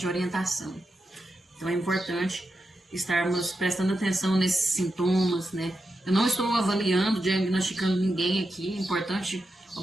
orientação. Então é importante estarmos prestando atenção nesses sintomas, né? Eu não estou avaliando, diagnosticando ninguém aqui, é importante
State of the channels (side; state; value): both; normal; correlation 0.87